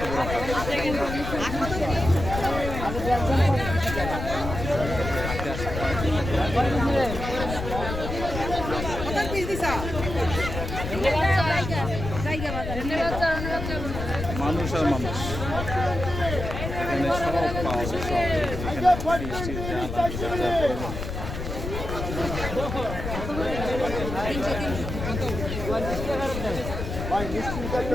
মানুষ আর মানুষ, এখানে সব পাওয়া যায়। সব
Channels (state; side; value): noise; left; rumble, 6 dB below the sound